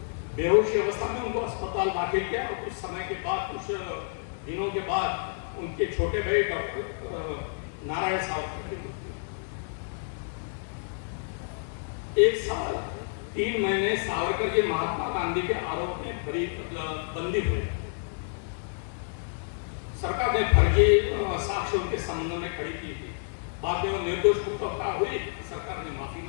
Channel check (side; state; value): right; silent; digital silence